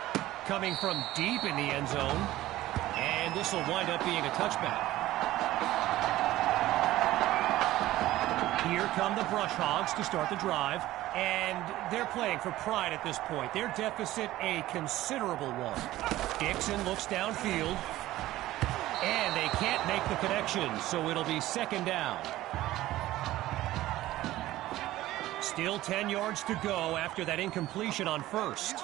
Coming from deep in the end zone. And this will wind up being a touchback. Here come the Brush Hogs to start the drive. And they're playing for pride at this point. Their deficit a considerable one. Dixon looks downfield. And they can't make the connection, so it'll be 2nd down. Still 10 yards to go after that incompletion on 1st.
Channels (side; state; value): left; quieter; 15.8 dB